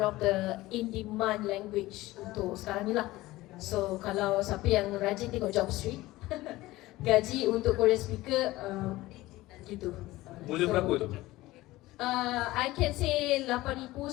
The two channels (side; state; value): right; quieter; 18.1 dB